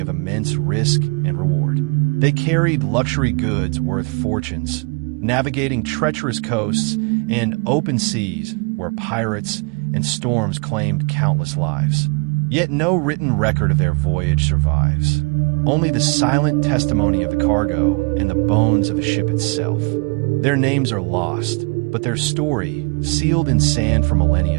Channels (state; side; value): quieter; left; 32.1 dB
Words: immense risk and reward. They carried luxury goods worth fortunes, navigating treacherous coasts and open seas where pirates and storms claimed countless lives. Yet no written record of their voyage survives. Only the silent testimony of the cargo and the bones of the ship itself. Their names are lost, but their story, sealed in sand for